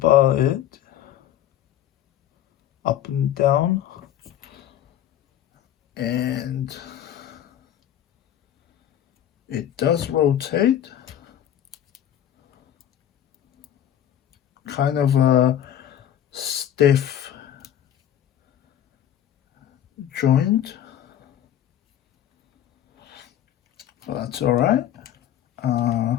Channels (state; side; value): quieter; right; 11.0 dB